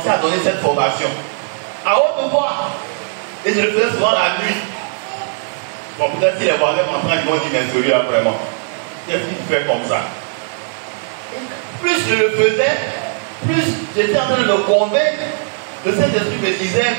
à donner cette formation. À haute voix. Et je le faisais souvent la nuit. Bon, peut-être si les voisins m'entendent, ils vont dire, mais celui-là vraiment. Qu'est-ce qu'il fait comme ça? Et plus je le faisais, plus j'étais en train de me convaincre Le Saint-Esprit me disait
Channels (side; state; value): left; silent; 60 dB below the other